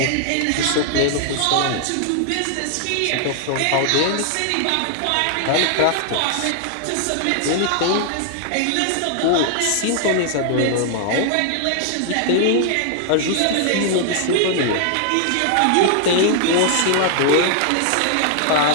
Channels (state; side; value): different; both; correlation 0.00